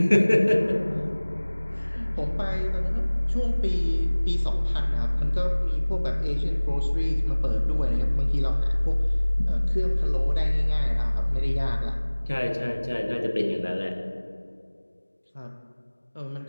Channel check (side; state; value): both; inverted; correlation -1.00